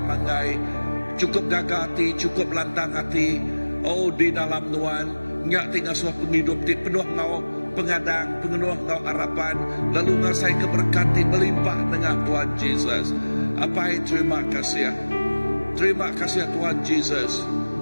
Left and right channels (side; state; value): both; inverted; correlation -1.00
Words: cukup gagah hati, cukup lantang hati. Oh di dalam Nuan nyak tinggal suah penghidup ti penuh ngau pengadang, penuh ngau harapan, lalu ngasai keberkati melimpah dengan Tuhan Jesus. Apa terima kasih. Terima kasih Tuhan Jesus.